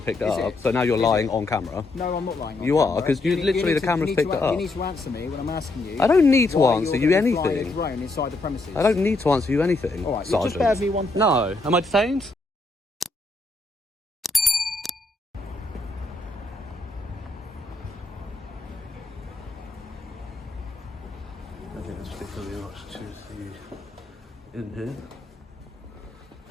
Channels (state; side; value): quieter; right; 3.0 dB